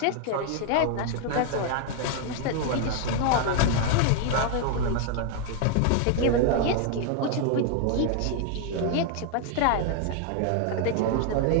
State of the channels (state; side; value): different; both; correlation 0.00